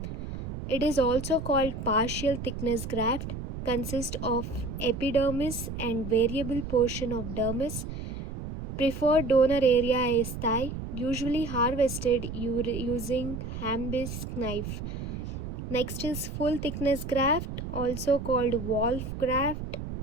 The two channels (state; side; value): noise; right; rumble, 7 dB below the sound